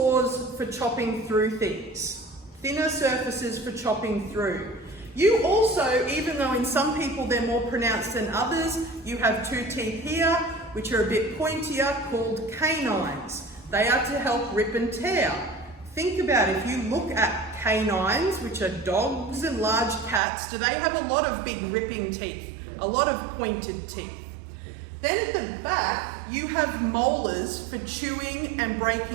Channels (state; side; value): drops out; left; at 20.2 s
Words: for chopping through things, thinner surfaces for chopping through. You also, even though in some people they're more pronounced than others, you have two teeth here, which are a bit pointier, called canines. They are to help rip and tear. Think about it, if you look at canines, which are dogs and large cats, do they have a lot of big ripping teeth, a lot of pointed teeth? Then at the back, you have molars for chewing and